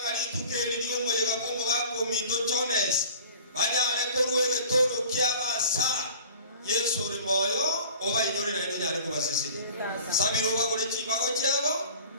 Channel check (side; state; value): both; inverted; correlation -0.44